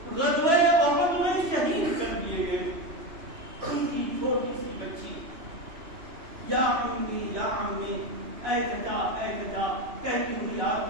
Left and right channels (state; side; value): late; left; 3.0 ms